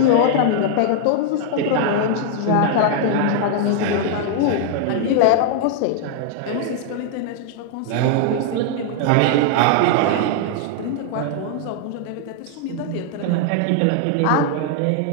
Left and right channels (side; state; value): both; different; correlation 0.00